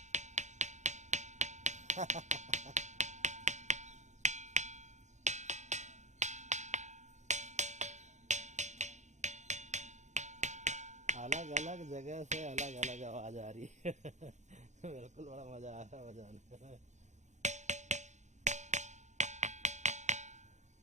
अलग अलग जगह से अलग अलग आवाज आ रही है। बिल्कुल, बड़ा मजा आ रहा है बजाने में।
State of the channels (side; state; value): left; late; 0.34 ms